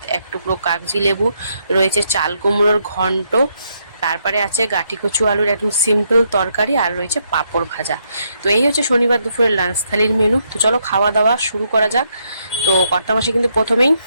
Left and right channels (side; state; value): both; inverted; correlation -0.76